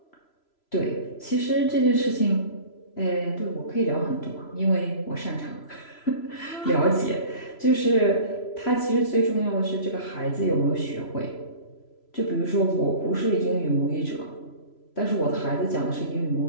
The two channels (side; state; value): right; late; 3.0 ms